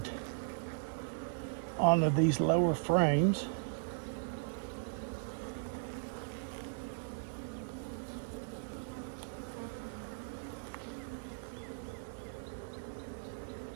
onto these lower frames.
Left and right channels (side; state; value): left; silent; digital silence